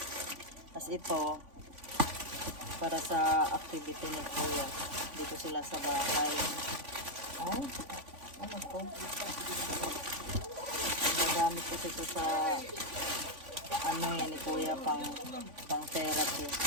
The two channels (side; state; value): left; late; 3.5 ms